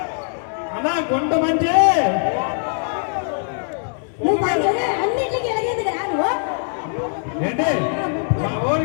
అన్నా, గుంట మంచి నువ్వు అన్నింటికి ఎలాగేది కదా నువ్వు ఏంటి?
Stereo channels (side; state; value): right; silent; digital silence